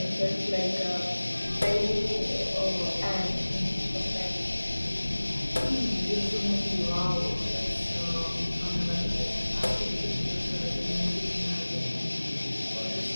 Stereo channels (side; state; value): both; inverted; correlation -1.00